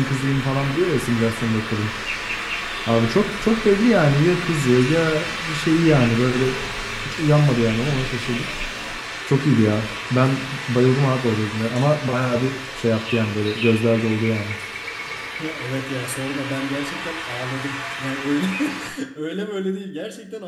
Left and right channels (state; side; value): identical; both; correlation 1.00